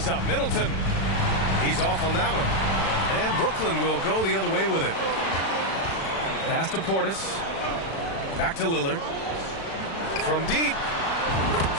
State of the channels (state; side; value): late; right; 36 ms